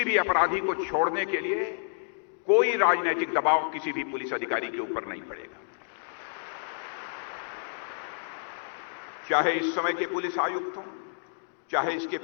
भी अपराधी को छोड़ने के लिए कोई राजनीतिक दबाव किसी भी पुलिस अधिकारी के ऊपर नहीं पड़ेगा। चाहे इस समय के पुलिस आयुक्त हों, चाहे इसके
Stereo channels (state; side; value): silent; right; digital silence